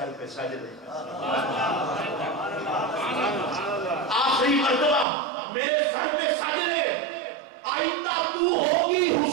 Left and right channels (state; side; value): drops out; left; at 5.1 s